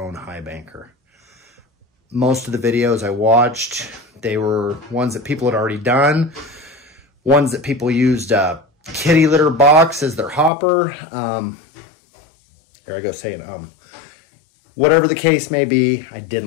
Highbanker. Most of the videos I watched, they were ones that people had already done, ones that people used a kitty litter box as their hopper. There I go saying Whatever the case may be, I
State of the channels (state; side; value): drops out; right; at 10.5 s